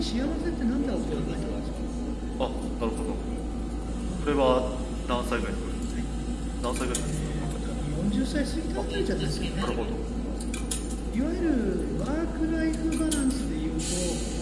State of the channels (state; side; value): identical; both; correlation 1.00